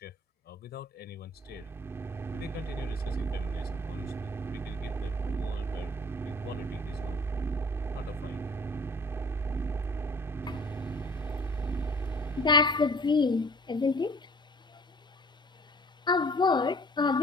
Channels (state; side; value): normal; both; correlation 0.51